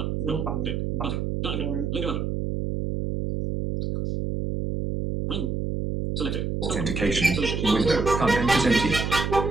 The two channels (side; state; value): right; noise; hum, 2 dB below the sound